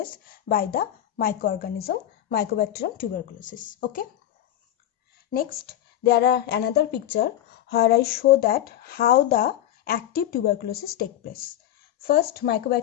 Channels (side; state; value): right; quieter; 12.1 dB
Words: by the microorganism Mycobacterium tuberculosis. Okay. Next, there are another picture where I show that how the active tuberculosis take place. First,